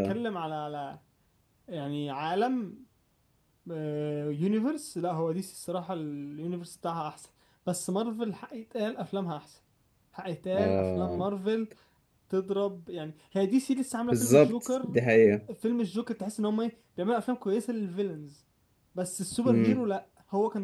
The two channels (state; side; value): identical; both; correlation 1.00